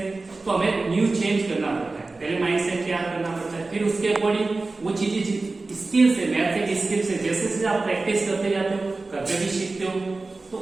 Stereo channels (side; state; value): left; quieter; 3.5 dB